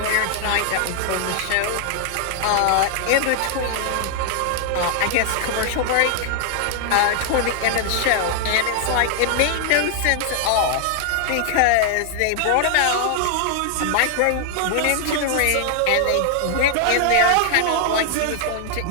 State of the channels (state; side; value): different; both; correlation 0.00